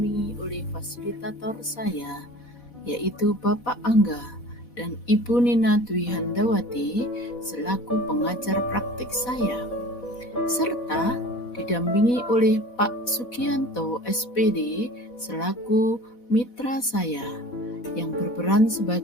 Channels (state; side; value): late; right; 4.1 ms